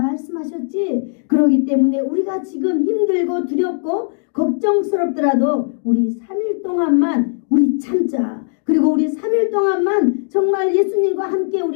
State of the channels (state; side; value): silent; right; digital silence